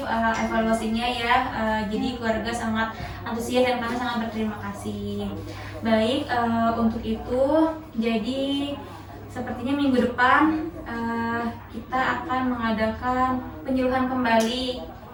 evaluasinya ya. Jadi keluarga sangat antusias dan kami sangat berterima kasih. Baik, untuk itu jadi sepertinya minggu depan kita akan mengadakan penyuluhan kembali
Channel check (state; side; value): identical; both; correlation 1.00